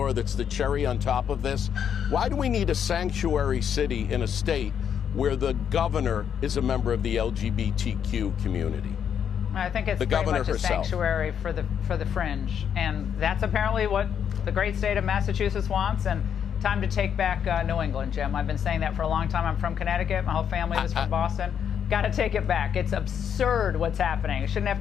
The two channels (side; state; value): right; quieter; 8.3 dB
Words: that's the cherry on top of this? Why do we need a sanctuary city in a state where the governor is a member of the LGBTQ community? I think it's the pretty governor much a herself. sanctuary for the fringe, and that's apparently what the great state of Massachusetts wants. And time to take back New England, Jim. I've been saying that for a long time. I'm from Connecticut. My whole family was from Boston. Got to take it back. It's absurd what's happening. You shouldn't